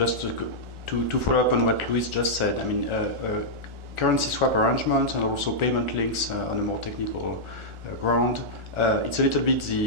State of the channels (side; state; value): left; late; 1.4 ms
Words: to follow up on what Luiz just said, I mean, currency swap arrangements and also payment links on a more technical ground. It's a little bit